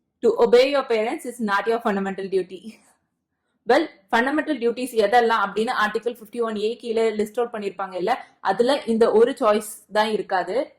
to obey your parents is not your fundamental duty. Well, fundamental duties எதெல்லாம் அப்படின்னு article 51A கீழே list out பண்ணிருப்பாங்க இல்ல, அதுல இந்த ஒரு choice தான் இருக்காது.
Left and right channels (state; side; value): identical; both; correlation 1.00